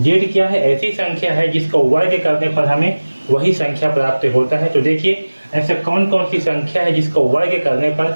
क्या है, ऐसी संख्या है जिसका वर्ग करने पर हमें वही संख्या प्राप्त होता है। तो देखिए ऐसा कौन कौन सी संख्या है जिसका वर्ग करने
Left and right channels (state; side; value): inverted; both; correlation -1.00